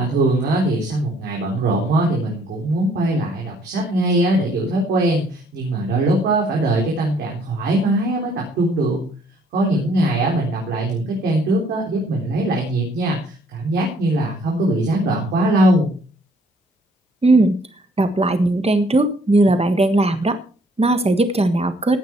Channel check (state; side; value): normal; both; correlation 0.63